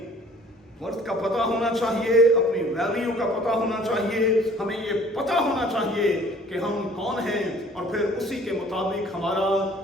वर्थ का पता होना चाहिए, अपनी वैल्यू का पता होना चाहिए। हमें ये पता होना चाहिए कि हम कौन हैं और फिर उसी के मुताबिक हमारा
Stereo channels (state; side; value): normal; both; correlation 0.53